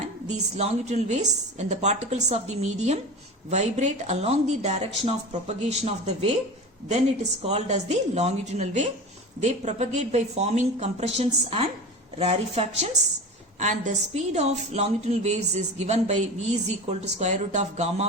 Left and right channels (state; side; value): normal; both; correlation 0.30